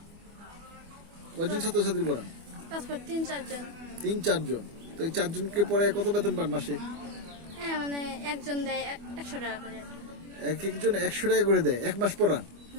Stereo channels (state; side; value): late; left; 24 ms